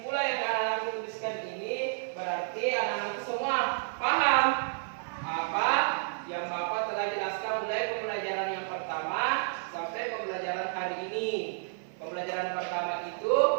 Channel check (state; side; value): silent; left; 57 dB below the other